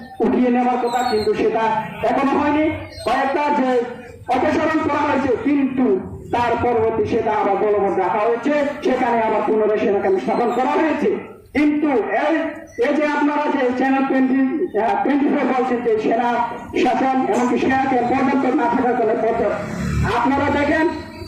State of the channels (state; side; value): identical; both; correlation 1.00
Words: উঠিয়ে নেওয়ার কথা, কিন্তু সেটা এখনো হয়নি। কয়েকটা যে অপসারণ করা হয়েছে, কিন্তু তার পরবর্তী সেটা আবার বলবৎ রাখা হয়েছে, সেখানে আবার পুনরায় সেনা ক্যাম্প স্থাপন করা হয়েছে। কিন্তু এই যে আপনারা যে চ্যানেল 24 বলছেন যে সেনা শাসন এমনকি সেনাকে পর্যাপ্ত না থাকার ফলে আপনারা দেখেন,